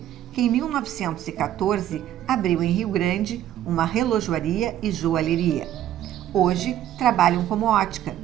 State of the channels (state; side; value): quieter; left; 11.9 dB